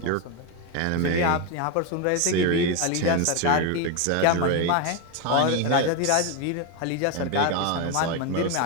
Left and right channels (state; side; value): different; both; correlation 0.02